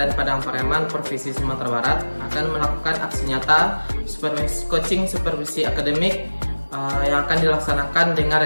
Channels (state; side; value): inverted; both; correlation -1.00